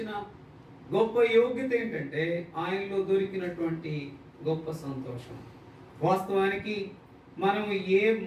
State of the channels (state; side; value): identical; both; correlation 1.00